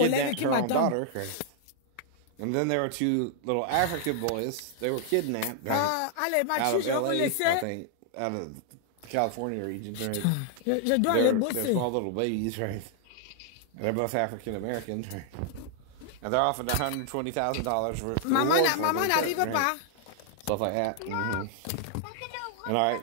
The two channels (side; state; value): both; different; correlation -0.01